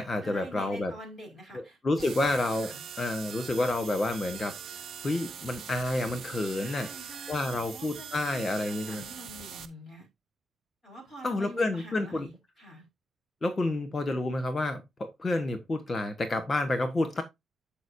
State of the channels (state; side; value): normal; both; correlation 0.87